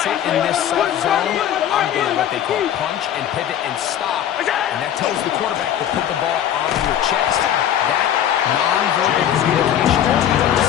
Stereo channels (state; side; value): quieter; right; 10.5 dB